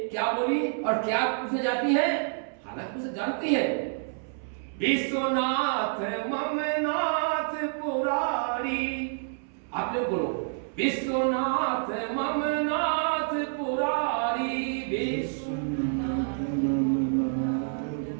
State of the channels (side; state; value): left; silent; 59 dB below the other